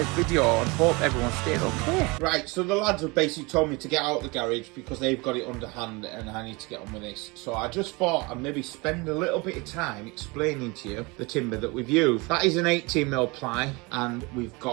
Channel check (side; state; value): left; quieter; 26.3 dB